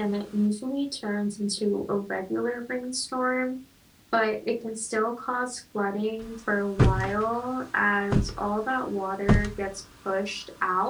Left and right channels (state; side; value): identical; both; correlation 1.00